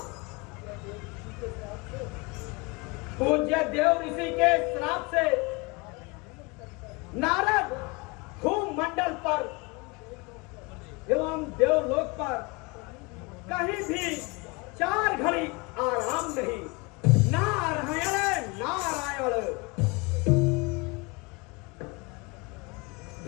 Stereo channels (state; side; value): quieter; right; 27.1 dB